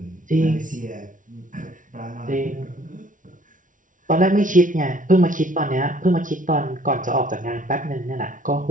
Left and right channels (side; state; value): left; late; 0.38 ms